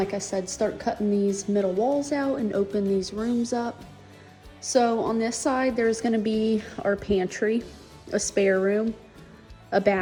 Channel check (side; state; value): both; identical; correlation 1.00